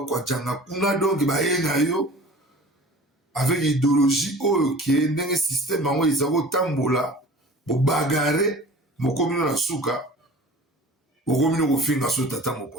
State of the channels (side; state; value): both; normal; correlation 0.42